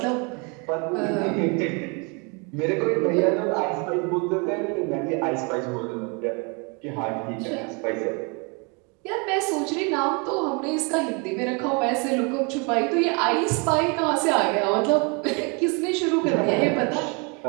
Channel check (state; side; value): quieter; left; 32.5 dB